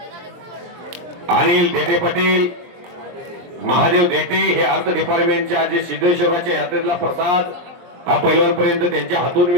अनिल देते पाटील महादेव देटे हे अर्थ डिपार्टमेंटच्या जे सिद्धेश्वराच्या यात्रेतला प्रसाद हा पैलवानपर्यंत त्यांच्या हातून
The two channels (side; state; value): left; late; 23 ms